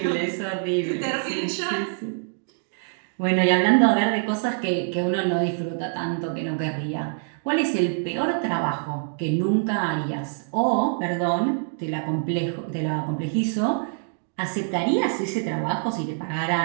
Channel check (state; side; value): silent; left; digital silence